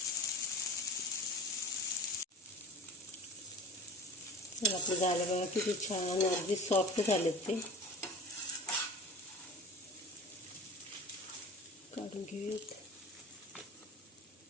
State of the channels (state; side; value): normal; both; correlation 0.37